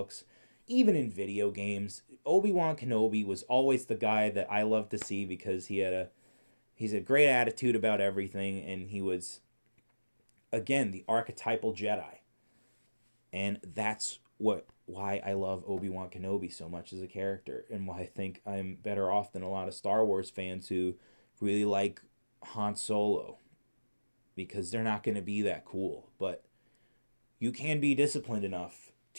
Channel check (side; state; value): both; inverted; correlation -1.00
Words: even in video games. Obi-Wan Kenobi was always the guy that I loved to see because he's a great attitude about everything, and he was, again, the archetypal Jedi. And that's why I love Obi-Wan Kenobi so much as a character, and why I think I'm better off than a lot of Star Wars fans who really like Han Solo, because they're not going to be that cool. But you can be disciplined enough